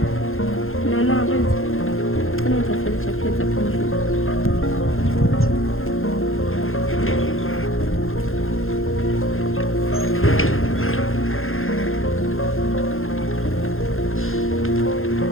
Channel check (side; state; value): right; late; 0.61 ms